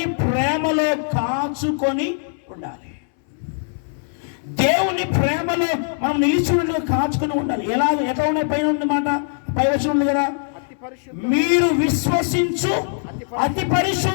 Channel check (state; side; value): silent; right; 65 dB below the other